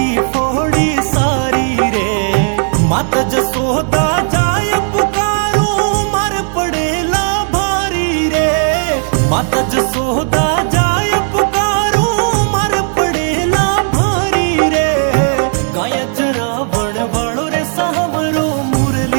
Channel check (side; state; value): left; silent; 66 dB below the other